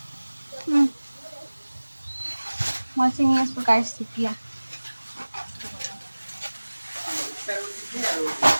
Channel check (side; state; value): both; inverted; correlation -1.00